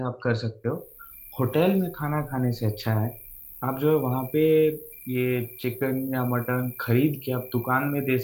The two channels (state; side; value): identical; both; correlation 1.00